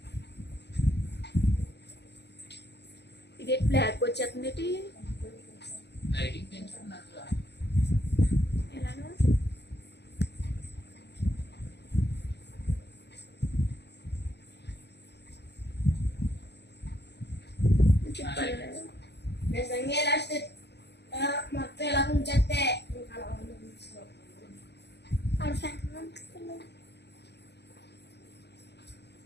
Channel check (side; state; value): right; late; 0.50 ms